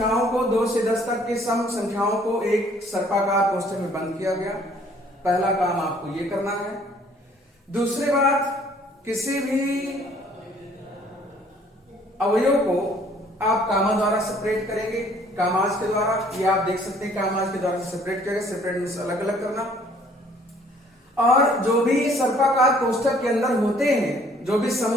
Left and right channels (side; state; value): both; normal; correlation 0.59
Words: को 2 से 10 तक के सम संख्याओं को एक सर्पाकार कोष्ठक में बंद किया गया। पहला काम आपको ये करना है। दूसरी बात, किसी भी अवयव को आप कामा द्वारा सेपरेट करेंगे, कामाज के द्वारा, ये आप देख सकते हैं कामाज के द्वारा सेपरेट करेंगे, सेपरेट मींस अलग अलग करना। और जो भी सर्पाकार कोष्ठक के अंदर होते हैं, जो भी